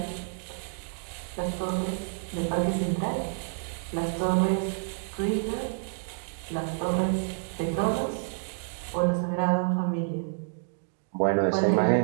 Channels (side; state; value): left; silent; digital silence